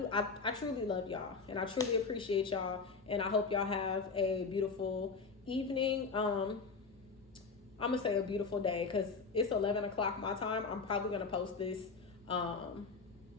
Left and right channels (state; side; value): quieter; right; 4.6 dB